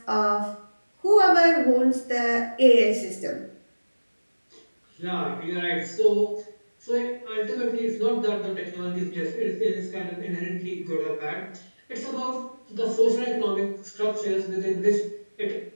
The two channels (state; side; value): inverted; both; correlation -1.00